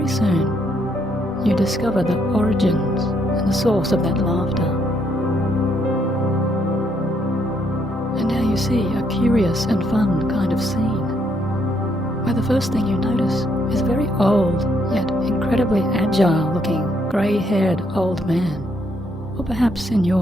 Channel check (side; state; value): both; normal; correlation 0.73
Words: soon, you discover the origins and the source of that laughter. And now you see a curious and fun kind of scene, where the first thing you notice is a very old, yet incredibly agile-looking, grey-haired old man, or perhaps in